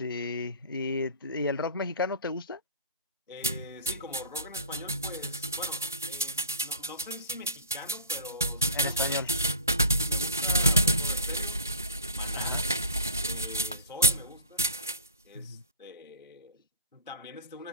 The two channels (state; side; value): inverted; both; correlation -0.38